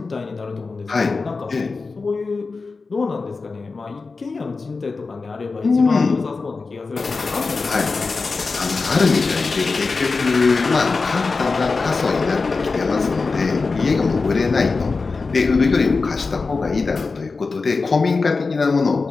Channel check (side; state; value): right; quieter; 4.2 dB